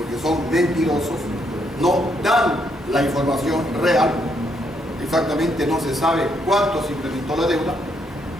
son mentirosos, no dan la información real. Exactamente no se sabe cuánto se incrementó la deuda,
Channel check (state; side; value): normal; both; correlation 0.75